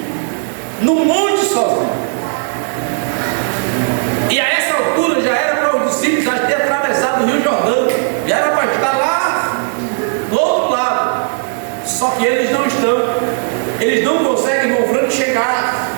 no monte sozinho. E a essa altura já era para os discípulos já ter atravessado o Rio Jordão, já era para estar lá do outro lado. Só que eles não estão, eles não conseguem, irmão Franco, chegar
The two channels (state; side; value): silent; left; 64 dB below the other